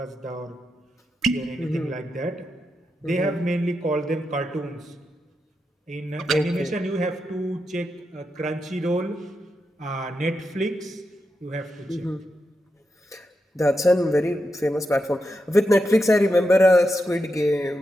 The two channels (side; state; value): both; normal; correlation 0.86